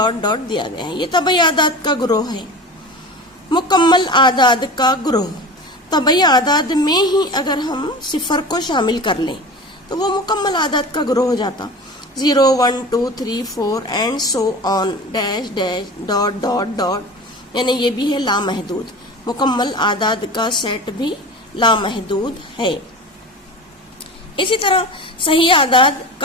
ڈاٹ دیا گیا ہے۔ یہ طبعی اعداد کا گروہ ہے۔ مکمل اعداد کا گروہ، طبعی اعداد میں ہی اگر ہم صفر کو شامل کر لیں تو وہ مکمل اعداد کا گروہ ہو جاتا۔ 0, 1, 2, 3, 4 and so on, dash dash dot dot dot, یعنی یہ بھی ہے لامحدود۔ مکمل اعداد کا سیٹ بھی لامحدود ہے۔ اسی طرح صحیح اعداد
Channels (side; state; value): both; normal; correlation 0.33